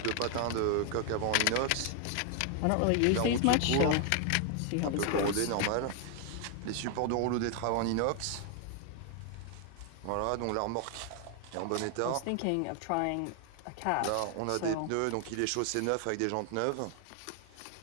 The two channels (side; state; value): both; different; correlation 0.00